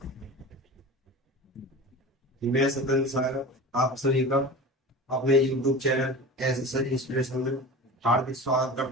मैं सतन सागर आप सभी का अपने YouTube चैनल एस इंस्पिरेशन में हार्दिक स्वागत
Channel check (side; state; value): both; normal; correlation 0.33